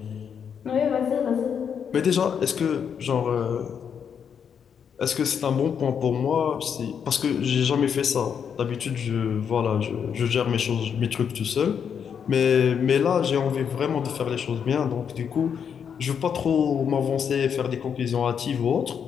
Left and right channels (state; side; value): quieter; right; 7.5 dB